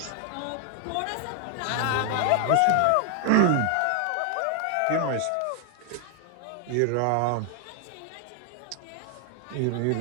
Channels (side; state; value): both; different; correlation 0.00